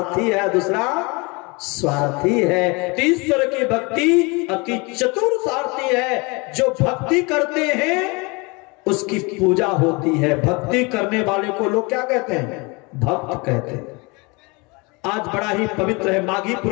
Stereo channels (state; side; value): quieter; right; 27.7 dB